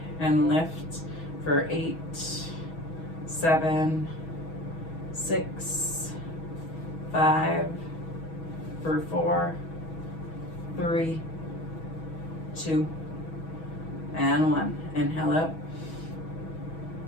and lift for 8, 7, 6, 5, for 4, 3, 2, and 1. Inhale up.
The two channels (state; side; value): late; right; 6.2 ms